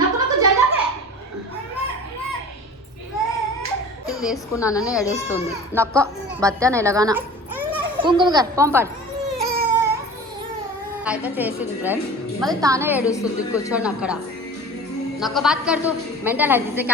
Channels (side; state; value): both; normal; correlation 0.39